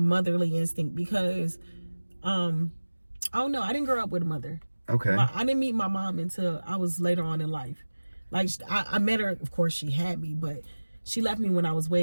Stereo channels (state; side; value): inverted; both; correlation -1.00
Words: instinct, because I don't know. I didn't grow up with a mother. Okay. I didn't meet my mom until I was later on in life. Like, I met her, of course she had me, but she left me when I was